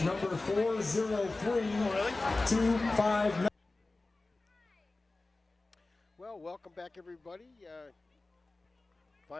number 403259. Well, welcome back, everybody.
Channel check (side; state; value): right; quieter; 3.2 dB